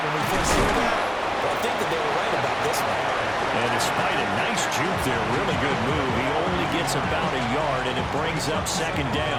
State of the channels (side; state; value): both; identical; correlation 1.00